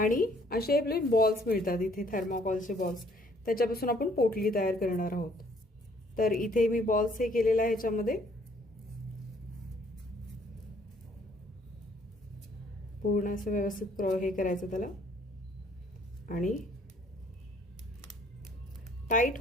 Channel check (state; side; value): normal; both; correlation 0.62